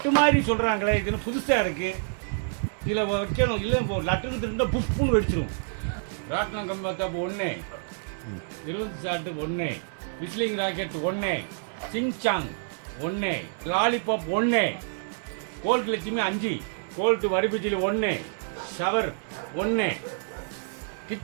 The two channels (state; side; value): silent; left; 60 dB below the other